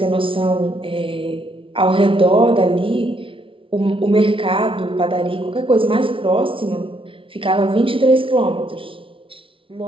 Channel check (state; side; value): late; left; 0.25 ms